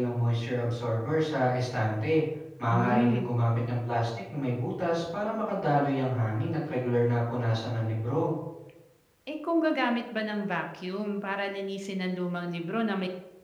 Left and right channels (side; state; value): both; identical; correlation 1.00